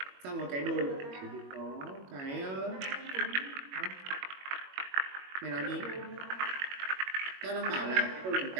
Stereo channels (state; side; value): late; left; 21 ms